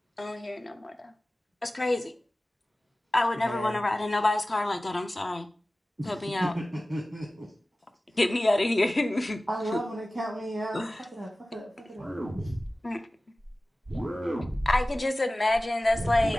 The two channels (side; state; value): both; normal; correlation 0.97